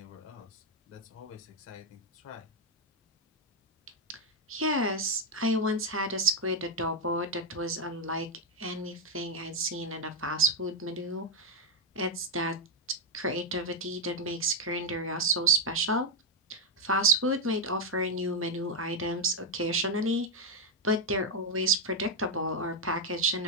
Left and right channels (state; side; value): normal; both; correlation 0.03